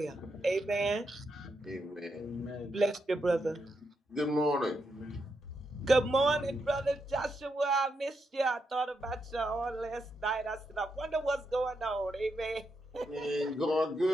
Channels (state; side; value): normal; both; correlation 0.83